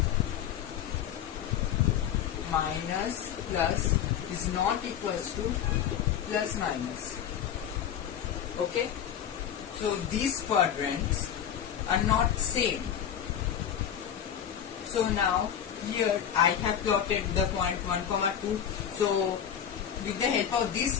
minus plus is not equals to plus minus. Okay? So these quadrants are not same. So now here I have plotted the point 1, 2. So with the help of this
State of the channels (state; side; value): quieter; right; 9.3 dB